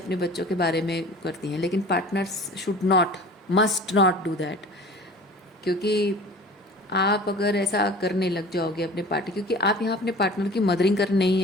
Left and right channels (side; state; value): both; normal; correlation 0.42